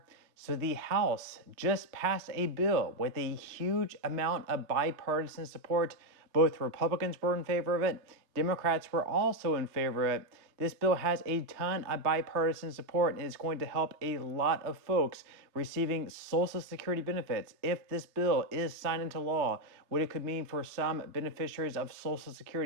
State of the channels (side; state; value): left; late; 3.2 ms